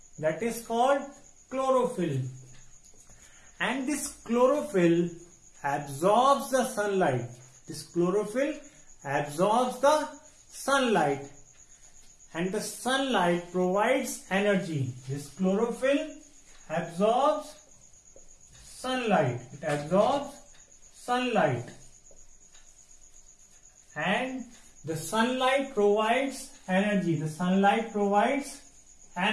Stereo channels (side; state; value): both; identical; correlation 1.00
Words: that is called chlorophyll. And this chlorophyll absorbs the sunlight. And the sunlight provides energy. This chlorophyll absorbs sunlight. And the sunlight provides